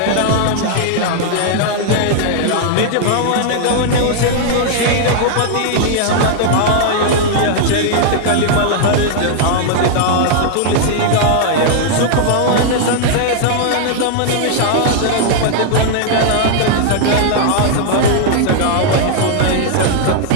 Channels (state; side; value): different; both; correlation 0.00